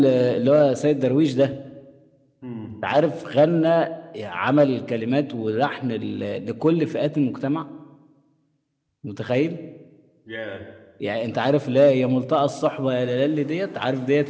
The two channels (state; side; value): identical; both; correlation 1.00